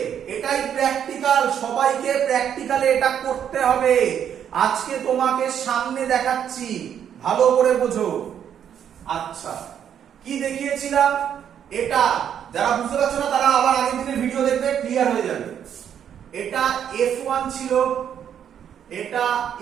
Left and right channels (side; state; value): left; quieter; 9.0 dB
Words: এটাই প্র্যাকটিক্যাল, সবাইকে প্র্যাকটিক্যালে এটা করতে হবে। আজকে তোমাকে সামনে দেখাচ্ছি, ভালো করে বোঝো। আচ্ছা কি দেখিয়েছিলাম, এটা যারা বুঝতে পারছো না তারা আবার আগের দিনের ভিডিও দেখবে, ক্লিয়ার হয়ে যাবে। এটা F1 ছিল, এটা